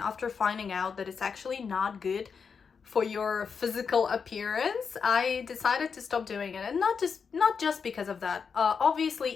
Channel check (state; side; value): quieter; right; 5.9 dB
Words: finding out that it's actually not good for your physical appearance, I decided to stop doing it. And not just because of that. Obviously,